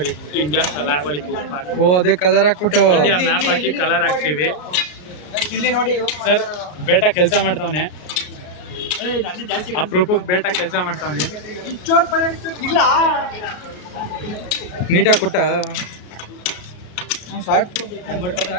ಇಂಡಿಯಾ ಫ್ಲಾಗ್ ಒಳಗೆ ಉಪ್ಪು ಹಾಕಿ, ಓ ಅದೇ ಕಲರ್ ಹಾಕ್ಬಿಟ್ಟು ಇಂಡಿಯಾ ಮ್ಯಾಪ್ ಹಾಕಿ ಕಲರ್ ಹಾಕ್ತೀವಿ. ಸರ್ ಬೇಟಾ ಕೆಲಸ ಮಾಡ್ತಾವನೆ, ಅಪ್ರೂಪಕ್ಕೆ ಬೇಟಾ ಕೆಲಸ ಮಾಡ್ತಾವನೆ. ನೀಟಾಗಿ ಕೊಟ್ಟ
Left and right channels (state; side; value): late; right; 33 ms